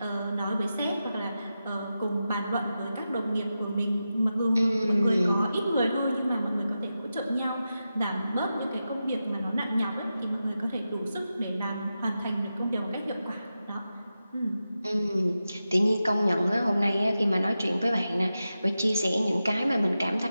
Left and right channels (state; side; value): inverted; both; correlation -0.91